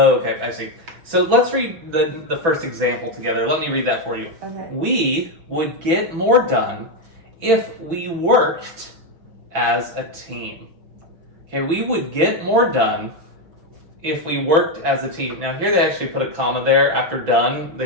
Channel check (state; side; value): late; left; 6.0 ms